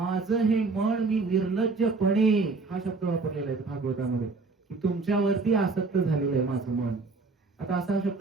हे मन मी निर्लज्जपणे, हा शब्द वापरलेला आहे भागवतामध्ये, की तुमच्यावरती आसक्त झालेलं आहे माझं मन. आता असा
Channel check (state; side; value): quieter; left; 3.9 dB